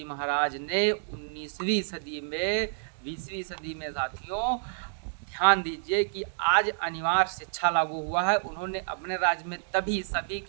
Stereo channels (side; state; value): left; silent; digital silence